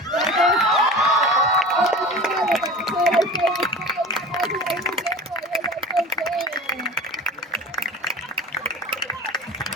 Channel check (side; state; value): both; normal; correlation 0.35